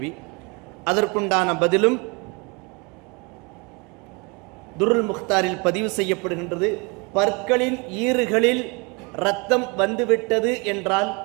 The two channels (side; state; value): left; quieter; 29.3 dB